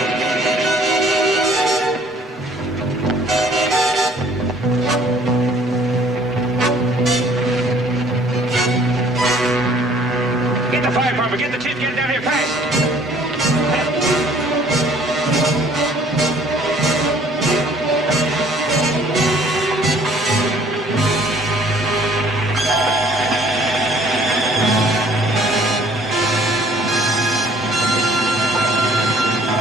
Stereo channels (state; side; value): normal; both; correlation 0.56